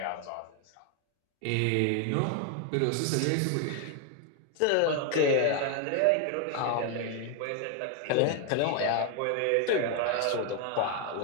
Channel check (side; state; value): both; different; correlation 0.01